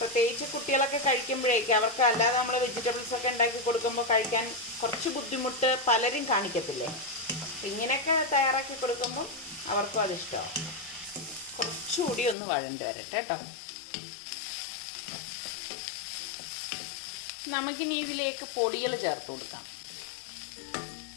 കുട്ടികളൊക്കെ കഴിക്കുമ്പോഴേക്കും അവർക്ക് അല്ലാതെ നമ്മൾ വെജിറ്റബിൾസൊക്കെ ഉണ്ടാക്കി കൊടുക്കുമ്പോൾ കഴിക്കാൻ കുറച്ച് ബുദ്ധിമുട്ട് പലരും കാണിക്കത്തില്ലേ. ഇങ്ങനെയൊക്കെ തയ്യാറാക്കി കൊടുക്കുമ്പോൾ അവർക്കും അതിഷ്ടമാവും. കുറച്ചുകൂടി ഒന്ന് വഴണ്ട് വരട്ടെ കേട്ടോ. നമുക്കിനി ഇതിലേക്ക് പൊടികൾ ചേർത്ത് കൊടുക്കാം.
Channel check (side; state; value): right; drops out; at 12.4 s